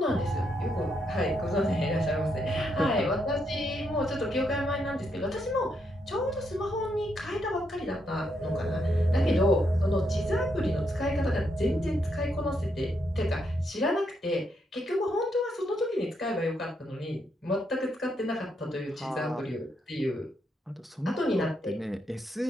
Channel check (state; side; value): normal; both; correlation 0.78